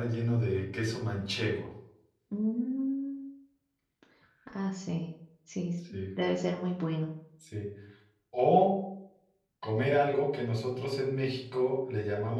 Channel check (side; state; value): both; identical; correlation 1.00